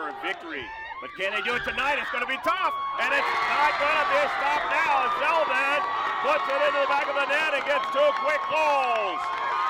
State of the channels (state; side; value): identical; both; correlation 1.00